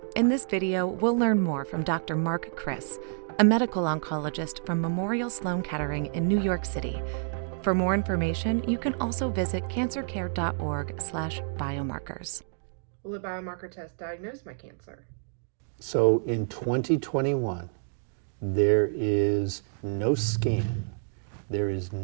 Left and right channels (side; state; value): left; silent; digital silence